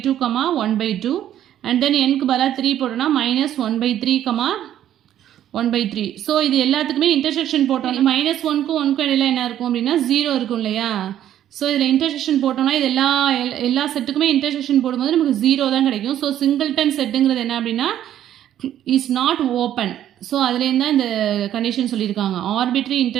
comma 1 by 2. And then என்க்கு பதிலாக 3 போட்டோன்னா minus 1 by 3 comma 1 by 3. So இது எல்லாத்துக்குமே இன்டர்செக்ஷன் போட்டோம். minus 1க்கும் 1க்கும் இடையில என்ன இருக்கும் அப்படின்னா 0 இருக்கும் இல்லையா. ஸோ இதில் இன்டர்செக்ஷன் போட்டோம்னா இது எல்லா செட்டுக்குமே இன்டர்செக்ஷன் போடும்போது நமக்கு 0 தான் கிடைக்கும். ஸோ சிங்கிள்டன் செட்டுங்கிறது என்ன அப்படின்னா இஸ் நாட் ஓப்பன். ஸோ அதுலேருந்து தான் இந்த கண்டிஷன் சொல்லியிருக்காங்க. Arbitrary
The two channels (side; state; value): left; quieter; 11.4 dB